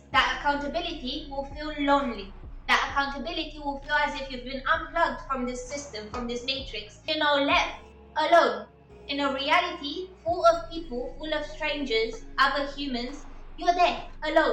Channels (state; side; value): identical; both; correlation 1.00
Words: that accountability will feel lonely. That accountability will feel as if you've been unplugged from this system, from this matrix, left alone in a reality full of people, full of strangers, other humans. You're there